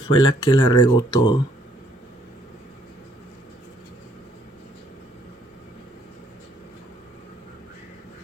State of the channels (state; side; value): normal; both; correlation 0.66